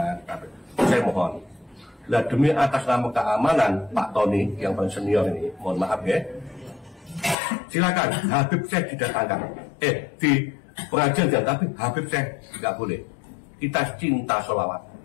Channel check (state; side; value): drops out; right; at 7.4 s